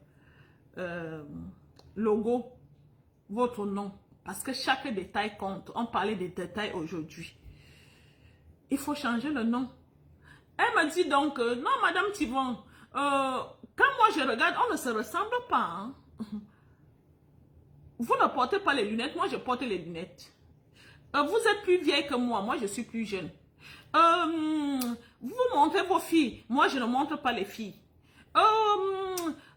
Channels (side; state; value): both; identical; correlation 1.00